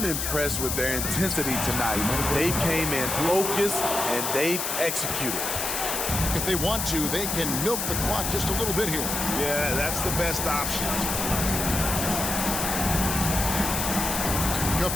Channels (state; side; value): noise; left; hiss, 2 dB below the sound